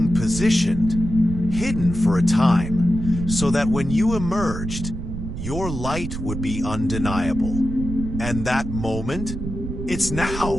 positioned, hidden for a time, so that when you emerged, your light would be undeniable. And that moment, it's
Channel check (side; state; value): right; noise; rumble, 6 dB below the sound